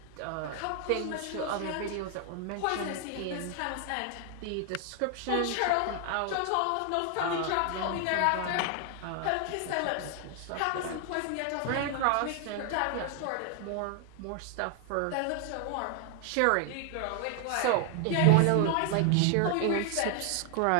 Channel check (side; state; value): both; different; correlation 0.00